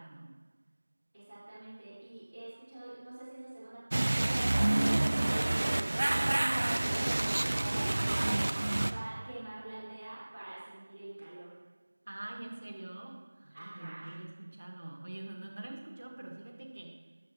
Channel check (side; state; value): both; inverted; correlation -1.00